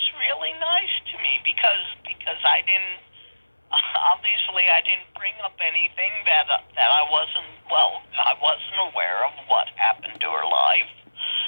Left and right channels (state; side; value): inverted; both; correlation -1.00